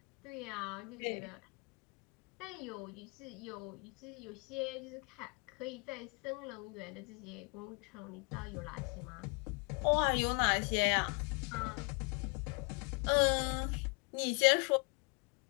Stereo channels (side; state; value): right; quieter; 33.2 dB